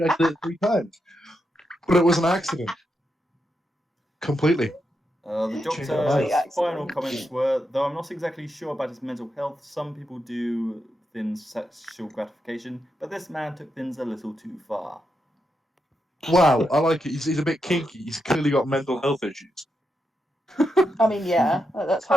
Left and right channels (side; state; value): both; normal; correlation 0.84